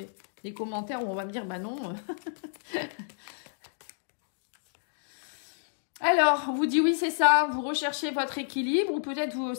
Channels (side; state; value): right; silent; digital silence